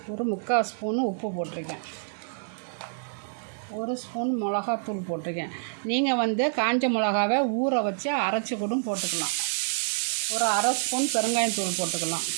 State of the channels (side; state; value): left; silent; digital silence